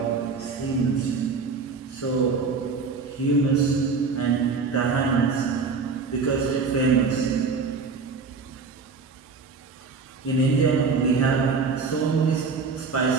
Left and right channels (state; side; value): quieter; left; 4.8 dB